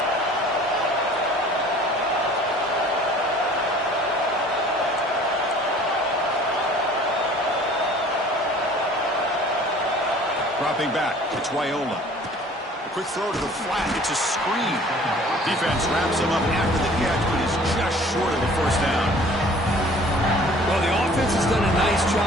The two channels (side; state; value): both; normal; correlation 0.50